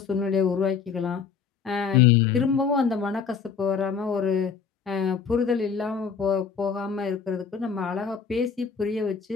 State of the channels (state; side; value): quieter; right; 6.3 dB